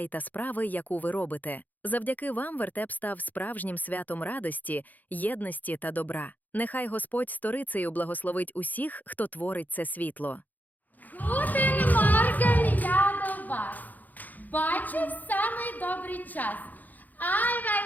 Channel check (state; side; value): late; right; 0.082 ms